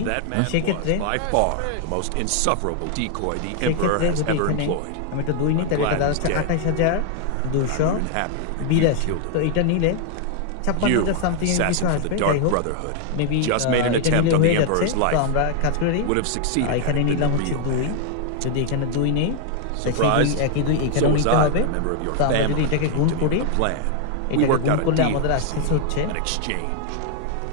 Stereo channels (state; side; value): different; both; correlation 0.00